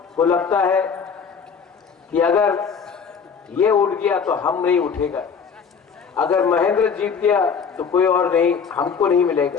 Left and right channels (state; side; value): quieter; right; 6.2 dB